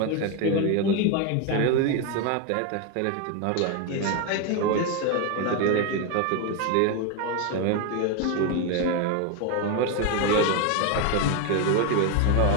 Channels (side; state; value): both; different; correlation 0.02